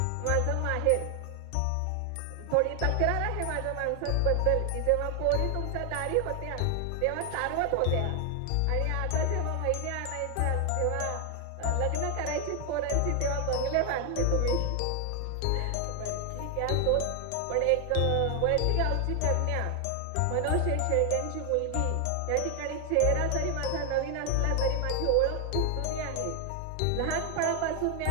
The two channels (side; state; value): both; different; correlation 0.00